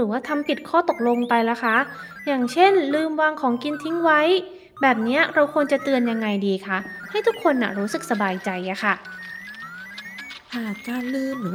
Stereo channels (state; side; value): identical; both; correlation 1.00